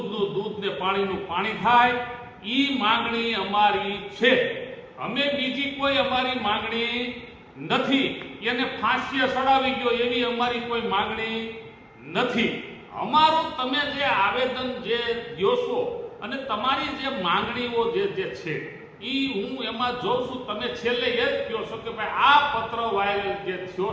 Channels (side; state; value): both; identical; correlation 1.00